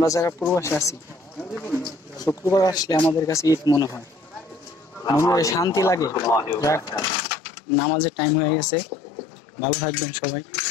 যারা প্রবাসে আছি শুক্রবার আসলে আমাদের কাছে ঈদ মনে হয়, শান্তি লাগে। যাক, নামাজের টাইম হয়ে গেছে, ভালো থাকবেন সবাই,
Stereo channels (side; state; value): right; drops out; at 7.1 s